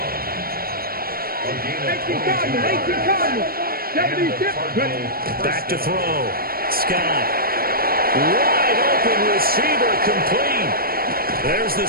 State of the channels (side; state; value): left; late; 0.43 ms